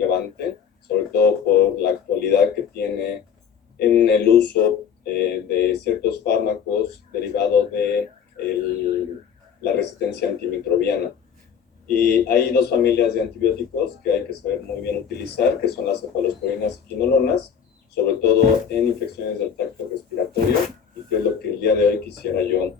sobre todo por la actualidad que tiene en el uso de ciertos fármacos derivados de la resistencia antimicrobiana. Y hay dos familias de antibióticos que hay que saber muy bien utilizar, que son las cefalosporinas y quinolonas, sobre todo en infecciones del tracto respiratorio, y que es lo que el día de hoy quisiera yo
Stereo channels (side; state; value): right; quieter; 7.4 dB